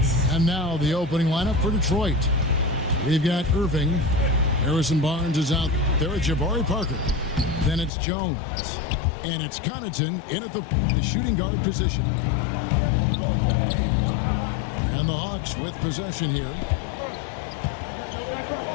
And now the opening lineup for Detroit. We've got Irving. Harrison Barnes is out there at Jabari Parker. Then it's Jones. And it's Connaughton in at the shooting guard position. And the Hawks with possession here.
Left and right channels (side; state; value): right; drops out; at 7.9 s